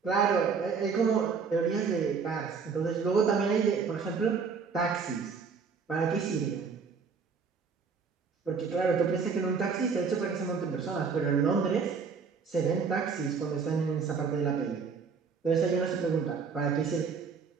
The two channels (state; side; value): quieter; left; 5.5 dB